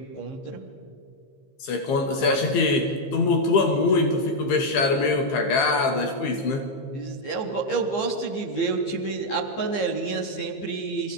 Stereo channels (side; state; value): right; late; 15 ms